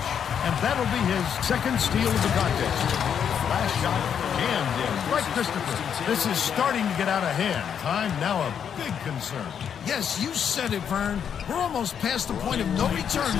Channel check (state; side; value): quieter; right; 8.1 dB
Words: And that'll be his second steal of the contest. Last shot jammed in by Christopher. This is starting to get out of hand. Time now a big concern. Yes, you said it, Vern. We're almost past the point of no return